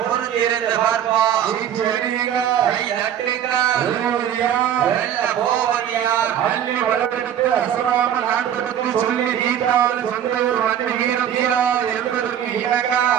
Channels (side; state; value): left; quieter; 9.9 dB